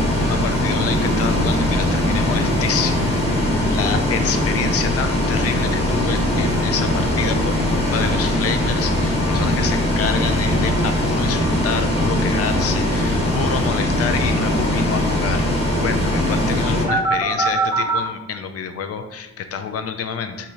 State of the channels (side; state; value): both; normal; correlation 0.50